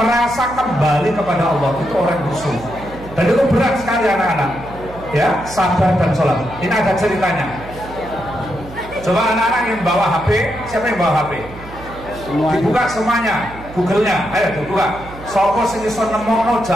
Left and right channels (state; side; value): noise; right; hum, 16 dB below the sound